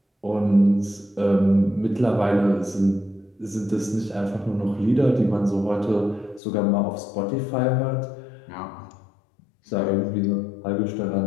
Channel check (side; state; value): right; drops out; at 6.4 s